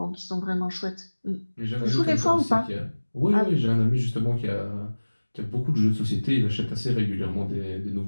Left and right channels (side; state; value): both; inverted; correlation -1.00